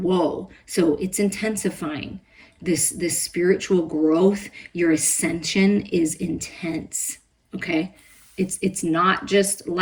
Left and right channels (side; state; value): both; identical; correlation 1.00